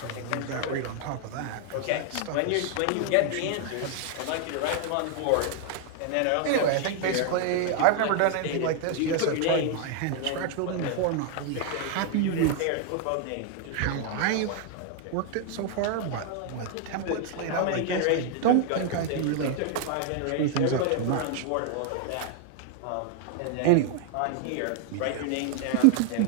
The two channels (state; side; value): different; both; correlation 0.00